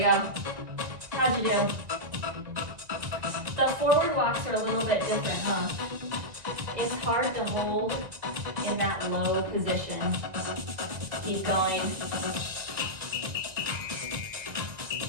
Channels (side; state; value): left; late; 1.9 ms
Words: How'd you do? The forward walks are a little bit different, huh? It's hard to hold in that low position. Keep going.